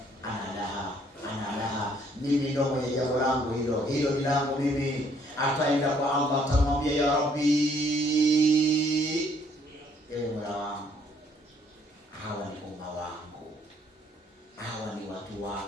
ana laha, mimi ndio mwenye jambo langu hilo ni langu mimi. Ataenda kwa Allah, atamwambia ya Rabbi, ewe Mola wangu, hawa ni umma wangu, hawa ni watu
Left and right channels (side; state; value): both; normal; correlation 0.65